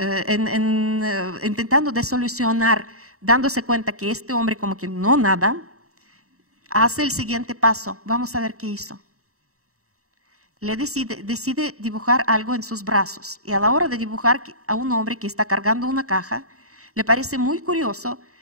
intentando de solucionar, dándose cuenta que este hombre como que no nada, hace el siguiente paso. Vamos a ver qué hizo. Decide dibujar algo en sus brazos. Y a la hora de dibujar a un hombre que está cargando una caja, le parece muy curioso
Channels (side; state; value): left; late; 0.65 ms